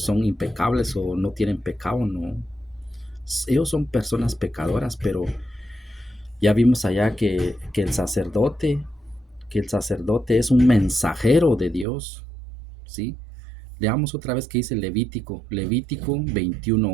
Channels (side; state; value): left; drops out; at 11.9 s